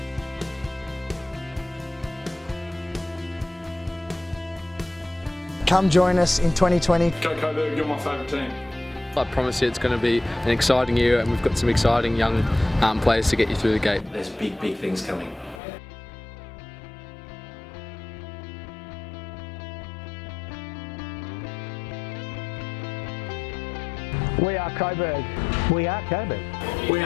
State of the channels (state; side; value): drops out; right; at 15.6 s